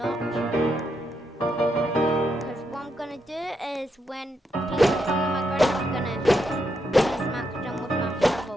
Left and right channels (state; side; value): normal; both; correlation 0.81